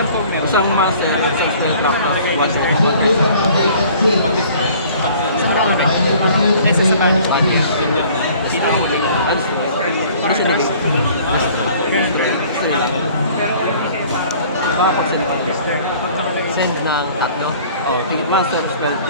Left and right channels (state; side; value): inverted; both; correlation -0.52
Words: ko meron. isang master, isang spell lock, one step. Conclusion of vacant seat. Sa marami. Isa sa banish. Yun yun na. Pinakahuli. Ano siya naging? Pag sinipag. Send ng tatlo. Oh, tigit master, spell